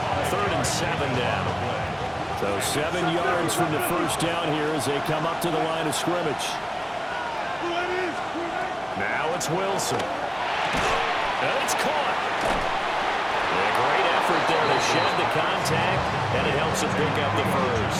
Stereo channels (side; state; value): both; identical; correlation 1.00